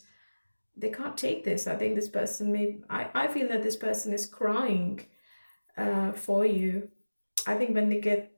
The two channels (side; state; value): both; inverted; correlation -1.00